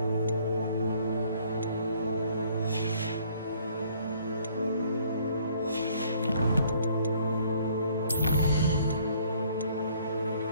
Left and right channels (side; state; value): both; inverted; correlation -0.61